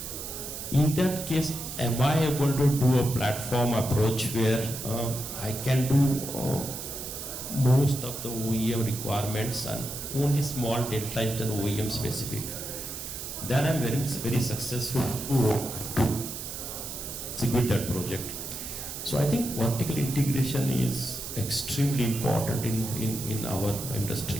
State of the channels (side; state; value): right; noise; hiss, 8 dB below the sound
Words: In that case, am I able to do a platform approach where I can do most of the OEM requirements and only small delta is done OEM specific? Then I'm very successful to execute that project. So I think vertical integration is extremely important in our